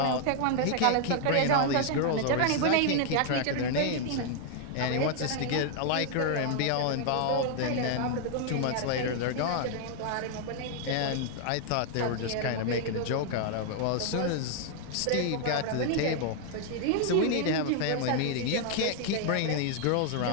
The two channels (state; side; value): different; both; correlation 0.00